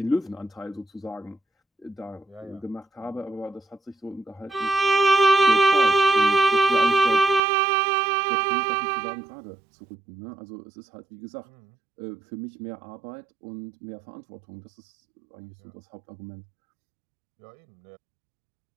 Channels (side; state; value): left; drops out; at 7.4 s